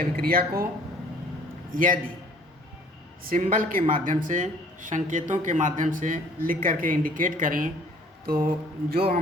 को यदि सिंबल के माध्यम से, संकेतों के माध्यम से लिख करके इंडिकेट करें तो जो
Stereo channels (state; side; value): normal; both; correlation 0.55